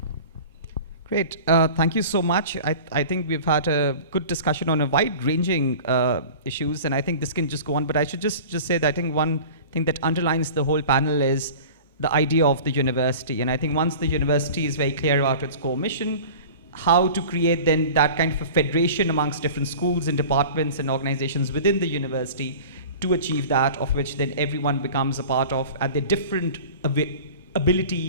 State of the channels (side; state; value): both; inverted; correlation -0.39